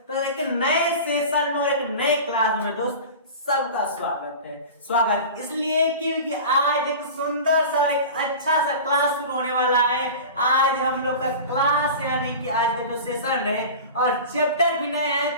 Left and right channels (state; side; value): inverted; both; correlation -0.34